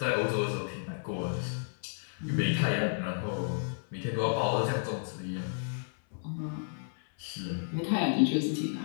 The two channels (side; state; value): right; silent; 56 dB below the other